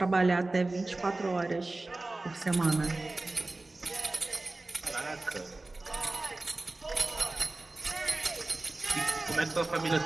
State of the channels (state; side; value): quieter; left; 3.0 dB